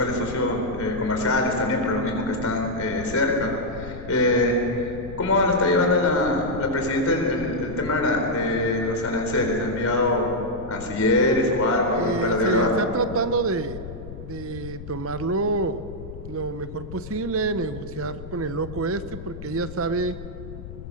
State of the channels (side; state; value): left; noise; rumble, 12 dB below the sound